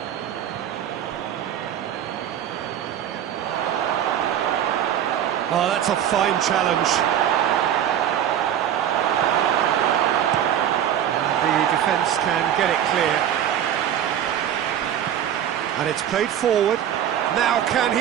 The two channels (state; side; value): quieter; left; 10.2 dB